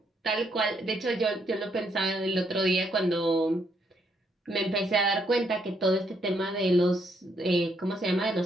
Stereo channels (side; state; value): both; normal; correlation 0.74